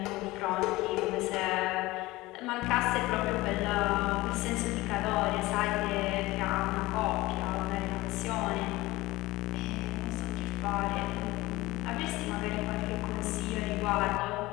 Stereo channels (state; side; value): quieter; right; 19.8 dB